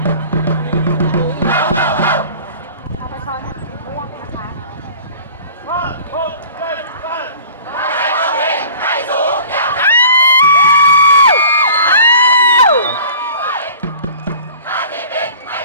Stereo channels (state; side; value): inverted; both; correlation -0.44